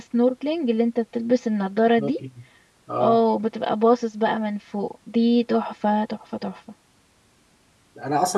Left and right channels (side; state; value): both; identical; correlation 1.00